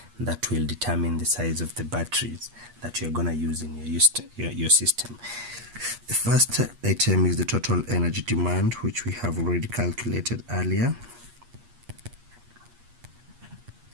that will determine the size of the batteries that you're gonna use in your system. The first item is the total energy demand, which we have already calculated earlier,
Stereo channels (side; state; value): left; late; 8.4 ms